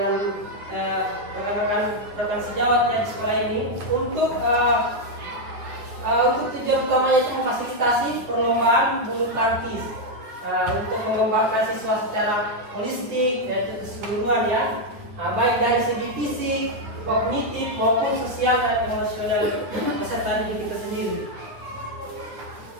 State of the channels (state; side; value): late; left; 9.3 ms